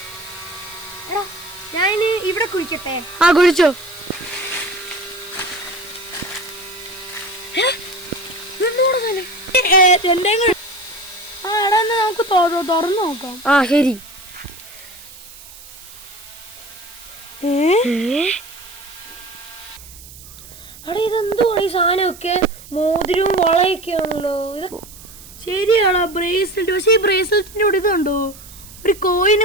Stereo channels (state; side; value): noise; right; hiss, 18 dB below the sound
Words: എടാ ഞാൻ ഇവിടെ കുഴിക്കട്ടെ? ആ കുഴിച്ചോ. ആ എടാ, എന്നാ നമുക്ക് തുറന്നു നോക്കാം. ആ ശരി. എടാ ഇതെന്തുവാണ് ഈ സാധനമൊക്കെ? മോതിരവും വളയൊക്കെയാണല്ലോ ഇത്. ശരിയാടാ, ബ്രേസ്ലെറ്റ്. പക്ഷെ ഈ ബ്രേസ്ലെറ്റിൻ്റെ കൂടെ ഇതുണ്ടോ, ഒരു